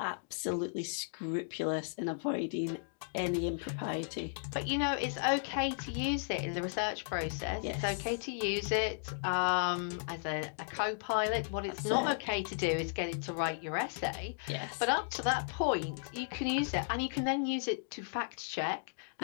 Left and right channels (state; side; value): silent; right; digital silence